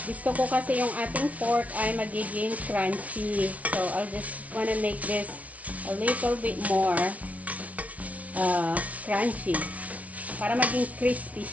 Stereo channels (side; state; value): left; late; 0.068 ms